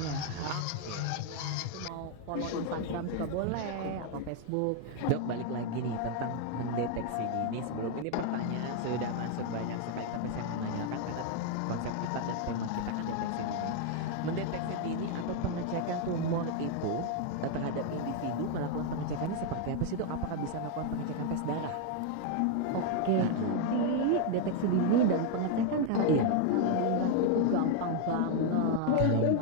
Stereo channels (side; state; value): both; different; correlation 0.00